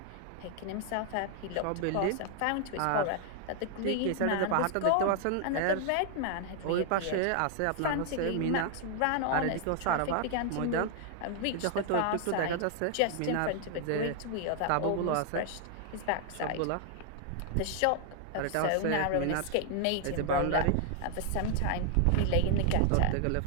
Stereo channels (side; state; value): both; different; correlation 0.00